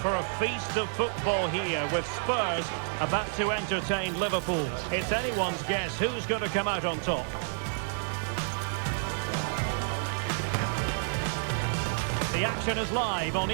for a feast of football here with Spurs about to entertain Liverpool. It's anyone's guess who's going to come out on top. The action is live on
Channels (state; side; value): silent; left; digital silence